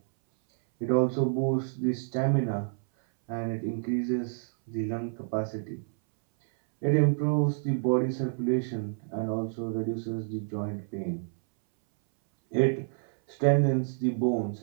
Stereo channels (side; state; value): left; silent; 59 dB below the other